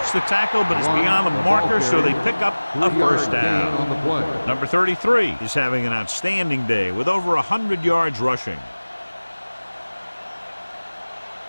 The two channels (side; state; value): both; inverted; correlation -1.00